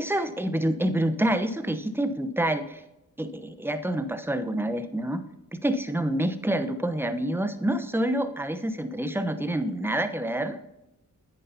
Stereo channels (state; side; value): normal; both; correlation 0.77